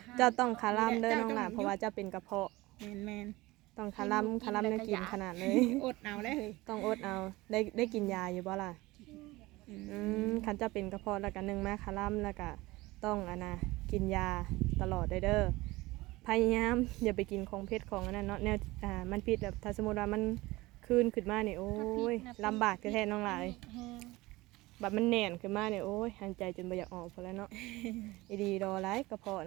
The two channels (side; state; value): left; quieter; 20.2 dB